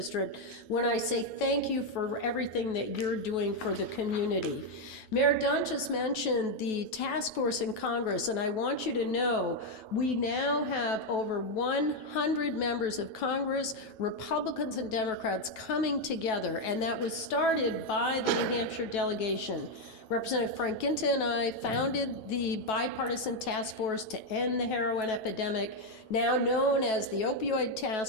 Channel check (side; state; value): right; late; 9.2 ms